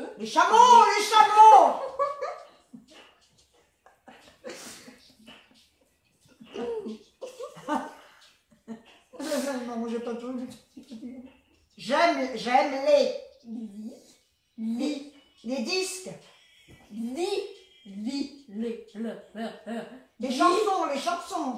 Les chameaux, les chameaux. Non, j'ai pas tout. J'aime les disques. Les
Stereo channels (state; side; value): identical; both; correlation 1.00